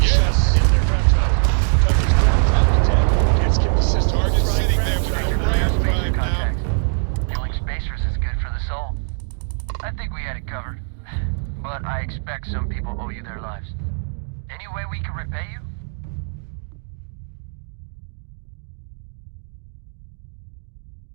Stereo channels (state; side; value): silent; left; digital silence